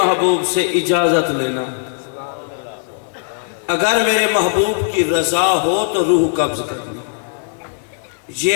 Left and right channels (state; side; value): silent; right; digital silence